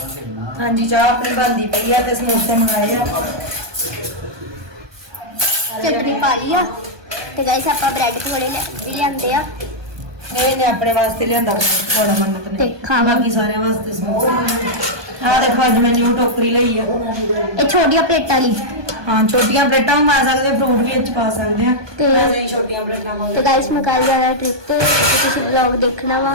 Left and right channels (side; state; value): left; late; 1.2 ms